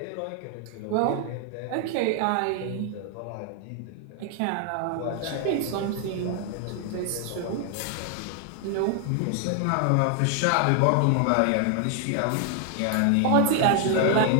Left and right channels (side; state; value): both; different; correlation 0.00